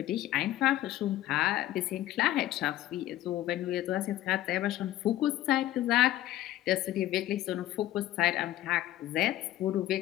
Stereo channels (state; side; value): quieter; right; 14.4 dB